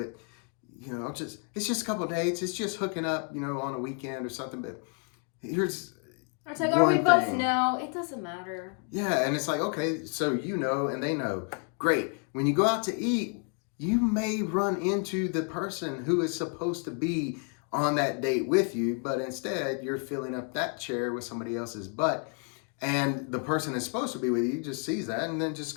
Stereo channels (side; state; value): right; quieter; 39.2 dB